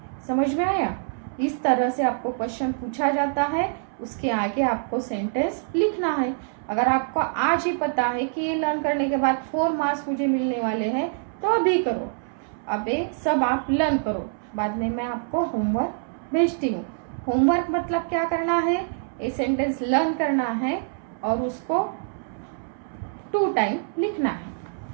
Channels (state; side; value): silent; left; 62 dB below the other